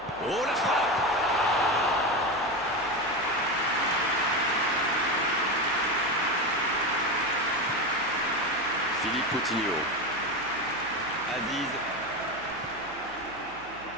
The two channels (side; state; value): right; noise; hum, 23 dB below the sound